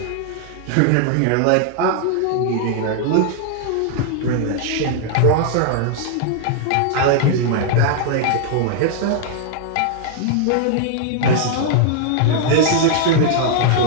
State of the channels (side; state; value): both; different; correlation -0.01